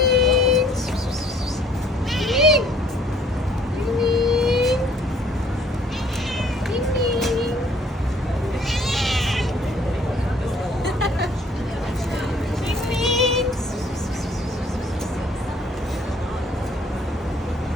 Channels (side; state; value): both; normal; correlation 0.59